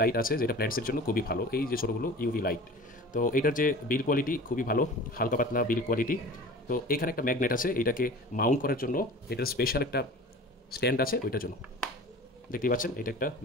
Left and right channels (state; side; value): normal; both; correlation 0.40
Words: লাইট আছে যেটা প্ল্যান্টসের জন্য খুবই ভালো। এই যে ছোটোগুলো ইউভি লাইট। তো এটার যে বিল কোয়ালিটি খুবই ভালো, হালকা পাতলা বিল কোয়ালিটি। তো এখানে একটা ম্যাগনেট আছে, এটাকে মাউন্ট করার জন্য এটার স্পেশাল একটা স্ট্যান্ড আছে ওইটার জন্য। দেখতেই পাচ্ছেন এটা একটা